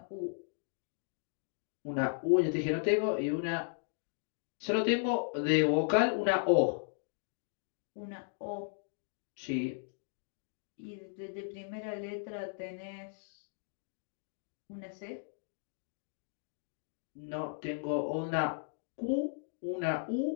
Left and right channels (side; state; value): right; silent; digital silence